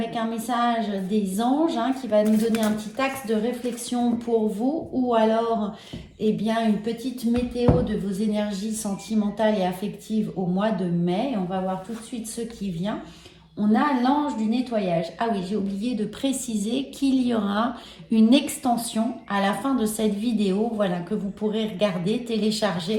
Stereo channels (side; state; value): both; identical; correlation 1.00